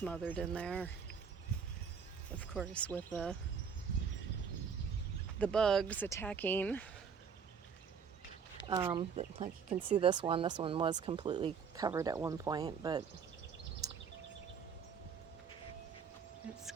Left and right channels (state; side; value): quieter; left; 6.6 dB